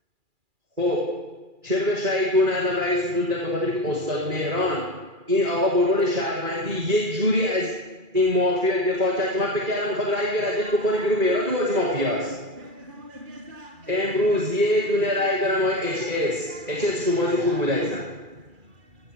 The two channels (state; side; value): late; left; 2.4 ms